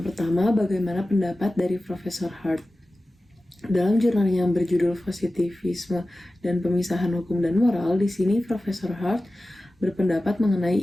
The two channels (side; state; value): both; normal; correlation 0.95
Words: pertama, bagaimana pendapat dari Profesor Hart? Dalam jurnal yang berjudul Positivisme dan Pemisahan Hukum dan Moral, di sini Profesor Hart berpendapat mengenai